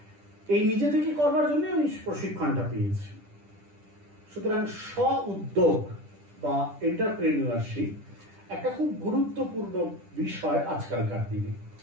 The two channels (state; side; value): late; left; 10 ms